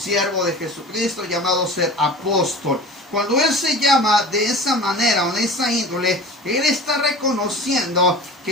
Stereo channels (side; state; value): both; normal; correlation 0.37